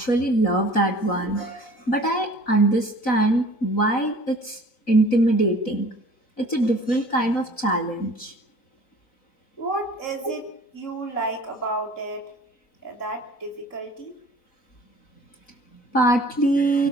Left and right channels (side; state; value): right; late; 4.0 ms